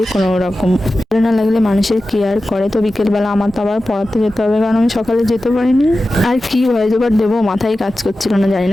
কোনো রকম ভালো না লাগলে মানুষের কেয়ার করে। তো বিকেলবেলা আমার তো আবার পড়াতে যেতে হবে, কারণ আমি সকালে যেতে পারিনি। আর কি ভয়েস ওভার দেবো মাথায় কাজ করছিল না, জানি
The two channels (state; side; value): normal; both; correlation 0.94